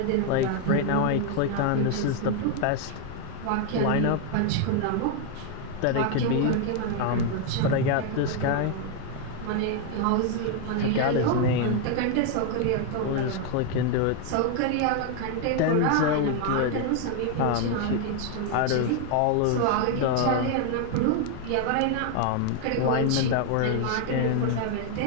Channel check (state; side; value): different; both; correlation 0.00